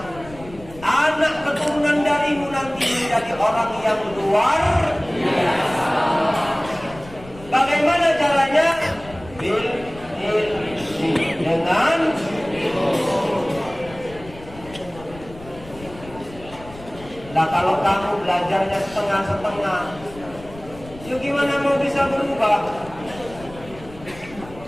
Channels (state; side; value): noise; left; rumble, 18 dB below the sound